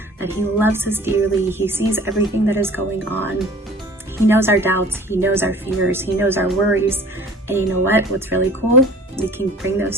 that he loves us dearly. He sees everything that is going on. He knows our doubts. He knows our fears. He knows our worries. And you know what? What's really cool? We can bring those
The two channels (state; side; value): normal; both; correlation 0.46